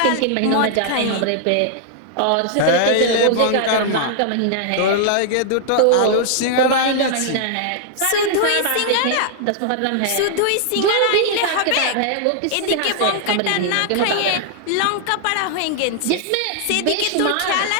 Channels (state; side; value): different; both; correlation -0.01